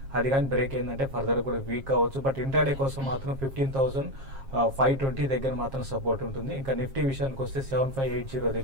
అది కానీ బ్రేక్ అయిందంటే ఫర్దర్ కూడా వీక్ అవ్వచ్చు. బట్ ఇంట్రాడే కోసం మాత్రం 15,520 దగ్గర మాత్రం సపోర్ట్ ఉంటుంది. ఇంకా నిఫ్టీ విషయానికి వస్తే 7580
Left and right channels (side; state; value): left; late; 7.4 ms